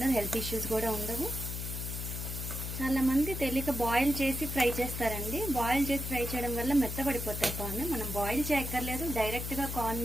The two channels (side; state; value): left; noise; hum, 5 dB below the sound